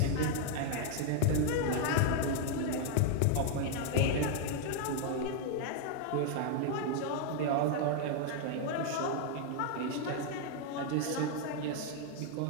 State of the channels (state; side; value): different; both; correlation 0.00